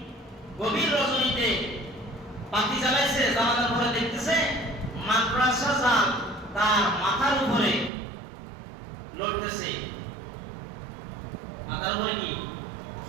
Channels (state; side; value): drops out; left; at 7.9 s